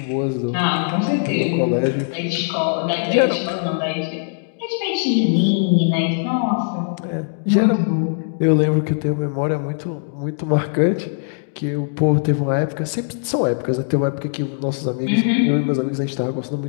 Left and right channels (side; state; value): right; silent; digital silence